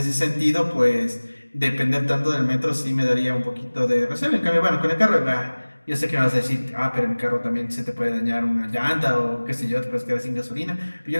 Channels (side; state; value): both; inverted; correlation -1.00